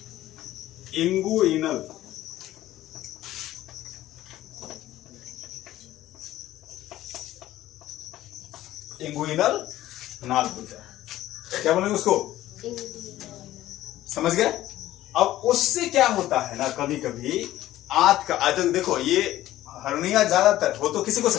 इंगुइनल, इंगुइनल नाल बोलते हैं। क्या बोलेंगे उसको? समझ गए? अब उससे क्या होता है ना, कभी कभी आंत का आज देखो, ये हर्निया ज्यादातर हो तो किसी को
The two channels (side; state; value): right; quieter; 14.6 dB